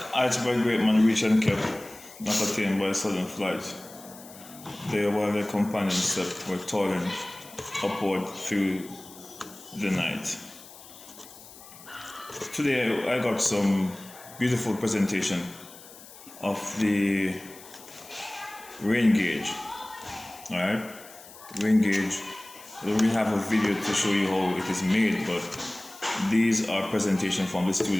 Iceberg great man reached and kept, not attained by sudden flight. They, while their companions slept, were toiling upward through the night. Today I got some beautiful presentation of the rain gauge. Alright? Rain gauge. I don't really have a video to show you how it is made, but these are presentation from the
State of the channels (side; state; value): left; noise; hiss, 19 dB below the sound